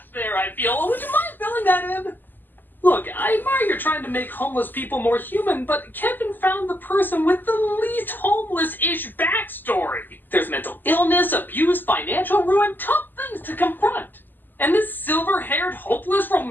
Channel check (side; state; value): right; late; 0.090 ms